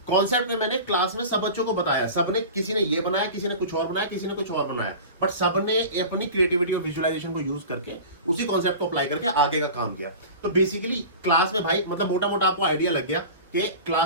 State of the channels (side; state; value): both; inverted; correlation -0.34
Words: कॉन्सेप्ट में मैंने क्लास में सब बच्चों को बताया, सबने, किसी ने ये बनाया, किसी ने कुछ और बनाया, किसी ने कुछ और बनाया, बट सबने अपनी क्रिएटिविटी और विजुअलाइजेशन को यूज करके उसी कॉन्सेप्ट को अप्लाई करके आगे का काम किया। तो बेसिकली क्लास में भाई मतलब मोटा मोटा आपको आइडिया लग गया कि